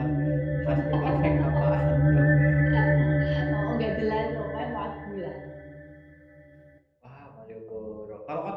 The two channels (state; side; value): identical; both; correlation 1.00